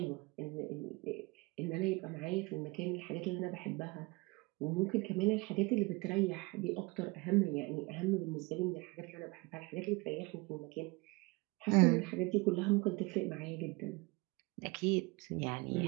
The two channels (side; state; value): left; quieter; 25.6 dB